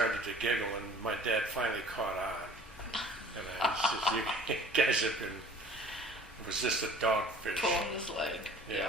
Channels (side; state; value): both; normal; correlation 0.49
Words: to giggle, and my dad finally caught on. And I said, "You guys have been." It was just a dogfish. pulling his leg?